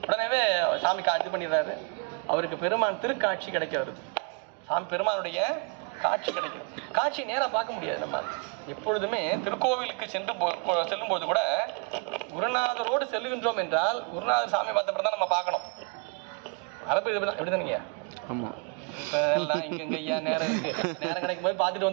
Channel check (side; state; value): left; quieter; 35.8 dB